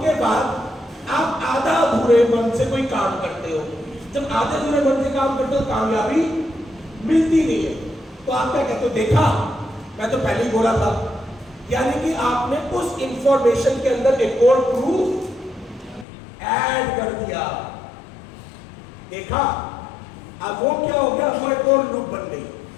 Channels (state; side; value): drops out; right; at 16.1 s